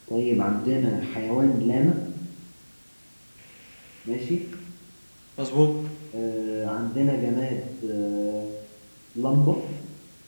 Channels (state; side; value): inverted; both; correlation -1.00